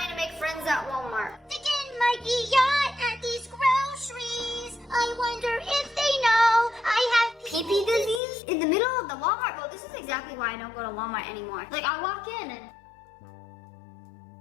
to make friends at Walmart. Again, Mikey, yacht at these groceries. I wonder if they know I have Pee-pee disease? In the middle of the Walmart? Well, this is exactly why I don't go to Walmart anymore. Like, I walk in and...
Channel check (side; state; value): right; drops out; at 8.2 s